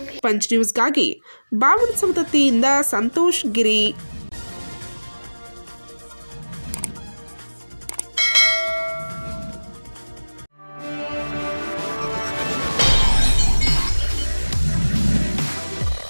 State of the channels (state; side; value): inverted; both; correlation -1.00